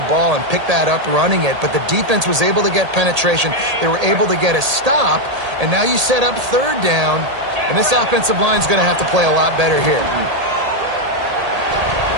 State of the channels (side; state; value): left; late; 1.8 ms